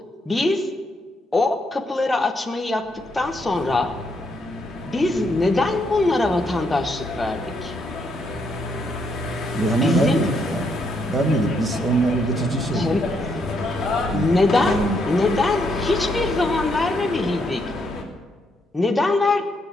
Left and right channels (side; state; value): both; normal; correlation 0.76